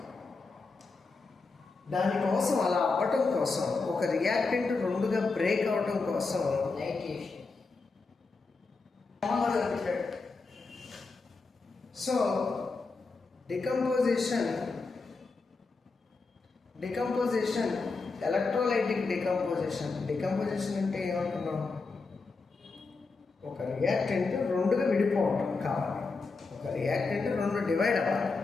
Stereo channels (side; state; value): right; quieter; 4.1 dB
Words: దానికోసం అలా అవ్వటం కోసం ఒక రియాక్టెంట్ రెండుగా బ్రేక్ అవ్వటం కోసం సో డికంపోజిషన్ ఎలక్ట్రోలైటిక్ డికంపోజిషన్ అంటే ఏమంటున్నాం? ఒక రియాక్టెంట్ రెండుగా విడిపోవటం కావాలి. ఒక రియాక్టెంట్ రెండు డివైడ్ అవ్వాలి.